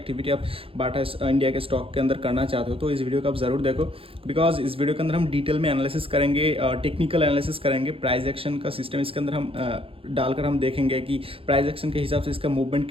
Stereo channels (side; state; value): left; late; 0.27 ms